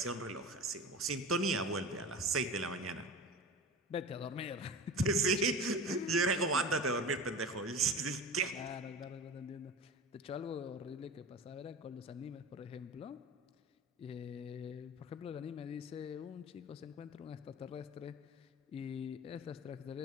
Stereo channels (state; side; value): normal; both; correlation 0.32